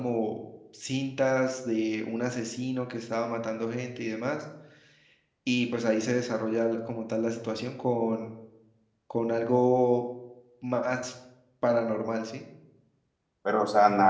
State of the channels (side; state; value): both; identical; correlation 1.00